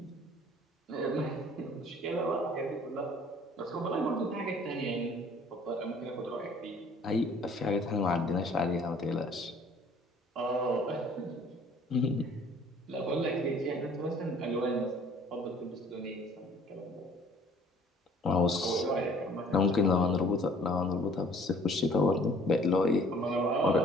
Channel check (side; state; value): both; normal; correlation 0.55